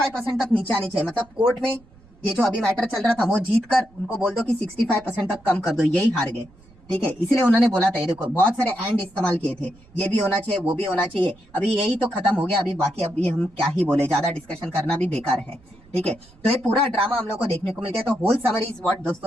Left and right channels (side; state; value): right; noise; rumble, 27 dB below the sound